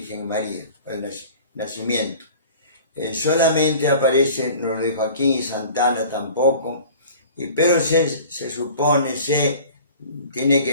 María, el nacimiento. Solamente aparece, nos lo dijo aquí, y Santana tampoco, pero se supone, tiene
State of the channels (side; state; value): both; inverted; correlation -0.44